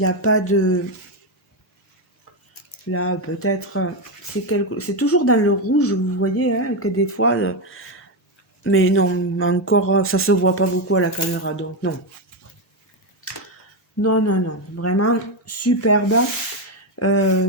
a pas de. Là, peut-être. C'est toujours dans le rouge, vous voyez, hein, que des fois. Mais non, encore, ça se voit pas beaucoup à la caméra, donc non. Non, non, non. Vraiment superbe.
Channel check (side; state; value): both; normal; correlation 0.08